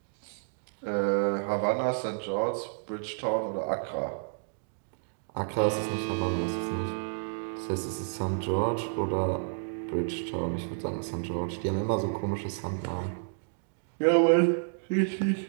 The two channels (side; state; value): left; silent; digital silence